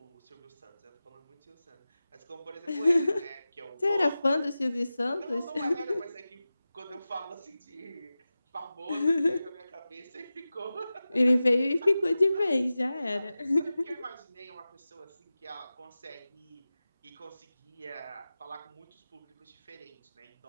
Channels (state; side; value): inverted; both; correlation -0.95